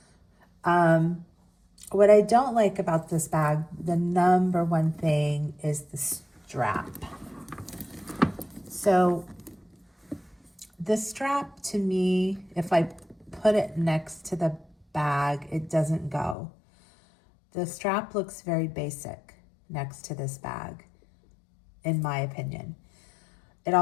What I don't like about this bag, the number one thing is the strap. So the strap, to me, if I put it next to the bag, it doesn't go. The strap looks very basic next to this bag, in my opinion. It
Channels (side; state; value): right; drops out; at 16.4 s